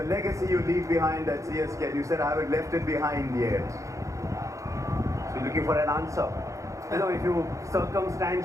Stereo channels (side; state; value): left; late; 0.15 ms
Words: legacy you leave behind at CSK, and you said I haven't left it behind yet. So you're looking for an answer. You know, if you